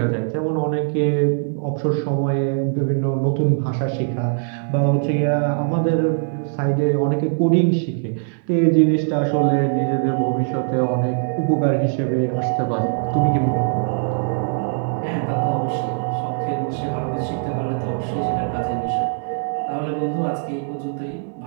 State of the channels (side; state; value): left; silent; digital silence